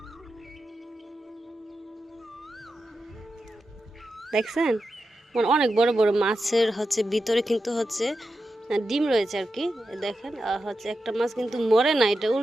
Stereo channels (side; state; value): both; normal; correlation 0.90